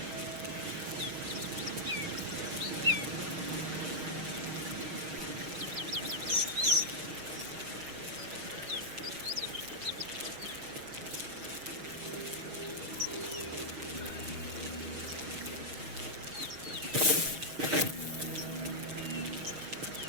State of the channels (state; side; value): late; left; 6.4 ms